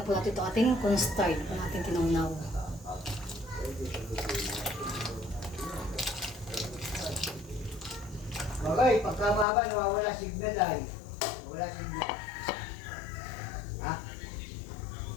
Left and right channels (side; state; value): right; drops out; at 9.5 s